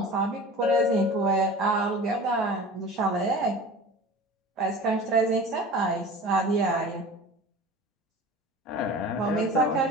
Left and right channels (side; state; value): both; normal; correlation 0.38